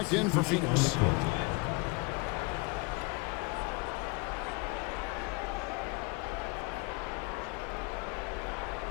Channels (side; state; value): right; quieter; 27.8 dB